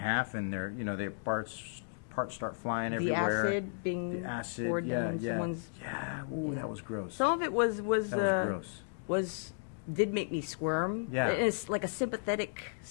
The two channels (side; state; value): right; silent; digital silence